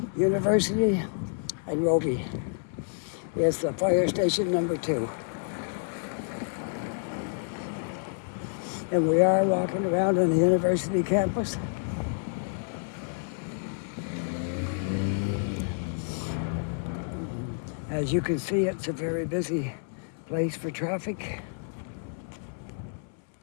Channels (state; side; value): silent; right; 59 dB below the other